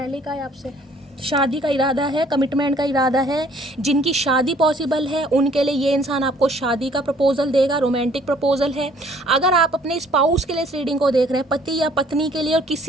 कहा है आपसे, शादी का इरादा है, कमिटमेंट का इरादा है। जिनकी शादी पॉसिबल है उनके लिए ये इंसान आपको शादी का प्रपोजल देगा, रोमांटिक प्रपोजल है। अगर आप अपने स्पाउस के लिए इस रीडिंग को देख रहे हैं, पति या पत्नी के लिए, और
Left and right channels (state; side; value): normal; both; correlation 0.58